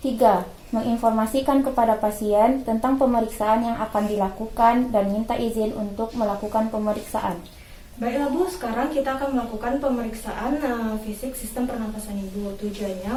3. Menginformasikan kepada pasien tentang pemeriksaan yang akan dilakukan dan minta izin untuk melakukan pemeriksaan. Baiklah Bu, sekarang kita akan melakukan pemeriksaan fisik sistem pernafasan Ibu. Tujuannya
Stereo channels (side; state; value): both; identical; correlation 1.00